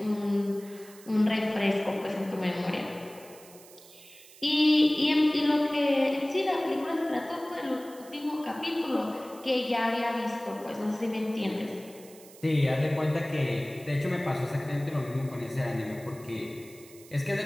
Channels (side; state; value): right; noise; hiss, 21 dB below the sound